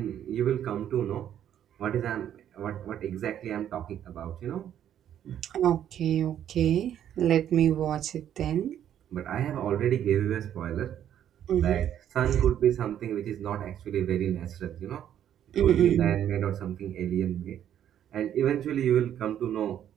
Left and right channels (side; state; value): left; quieter; 10.3 dB